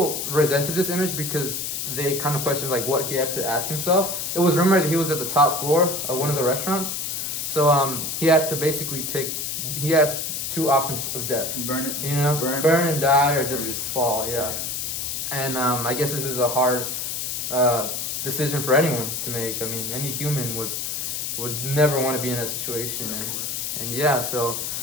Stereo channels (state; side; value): noise; left; hiss, 3 dB below the sound